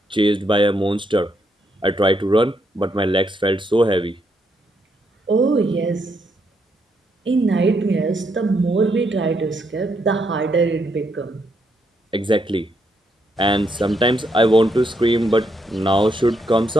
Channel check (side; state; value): both; normal; correlation 0.77